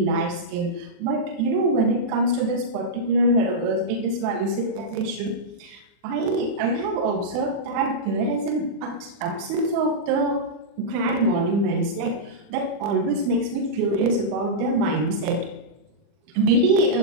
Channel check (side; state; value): left; late; 40 ms